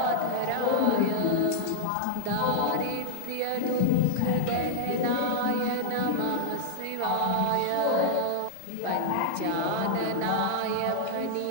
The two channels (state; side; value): different; both; correlation 0.00